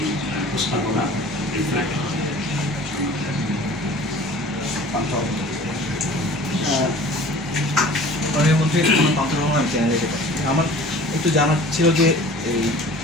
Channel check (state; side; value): normal; both; correlation 0.45